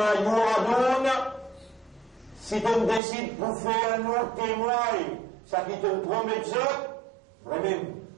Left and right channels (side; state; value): left; drops out; at 3.0 s